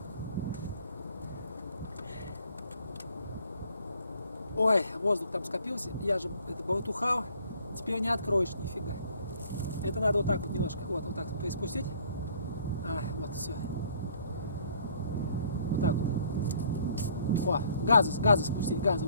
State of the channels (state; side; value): inverted; both; correlation -0.58